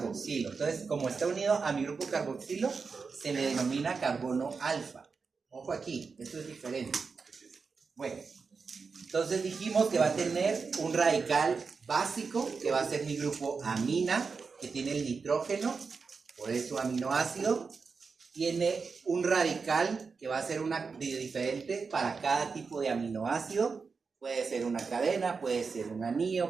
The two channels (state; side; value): quieter; left; 5.0 dB